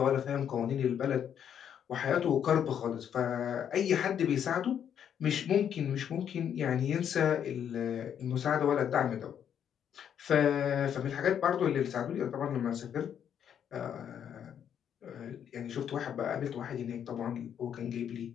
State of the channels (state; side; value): quieter; right; 8.9 dB